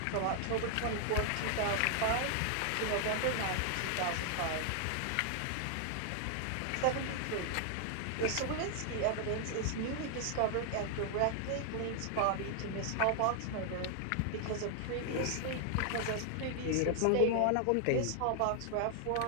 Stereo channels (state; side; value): different; both; correlation 0.00